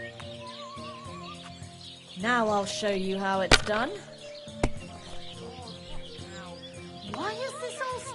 Now I'll show you how it's done. Why is this all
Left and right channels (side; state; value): both; identical; correlation 1.00